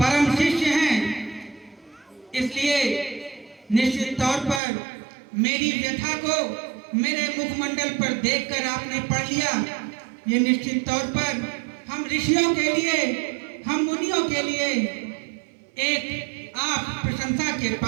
शिष्य हैं, इसलिए निश्चित तौर पर मेरी व्यथा को मेरे मुखमंडल पर देखकर आपने पढ़ लिया। ये निश्चित तौर पर हम ऋषियों के लिए, हम मुनियों के लिए एक आप प्रशंसा के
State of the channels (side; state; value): left; drops out; at 4.6 s